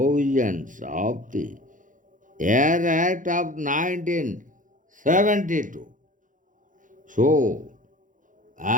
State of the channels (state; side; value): late; left; 0.38 ms